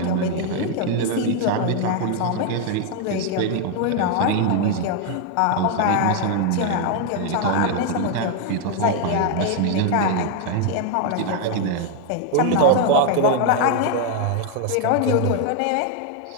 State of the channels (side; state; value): both; different; correlation 0.01